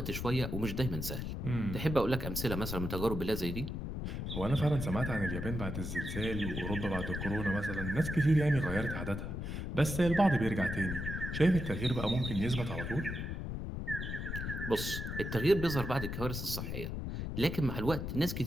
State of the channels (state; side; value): noise; left; rumble, 4 dB below the sound